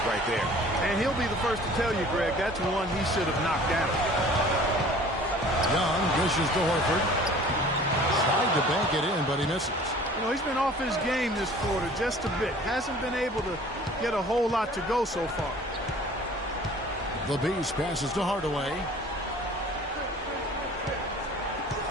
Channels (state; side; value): normal; both; correlation 0.48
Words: right there. And he'll be the first to tell you, Greg, that's one he should have knocked down. Young dishes to Horford. Tried to bank it in, but he misses. You know, he's been off his game this quarter just a bit. Hasn't been able to get a whole lot to go so far. The Beast passes to Hardaway.